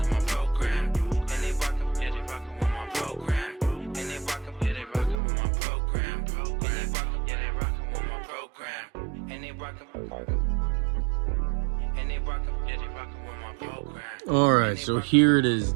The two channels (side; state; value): left; drops out; at 5.2 s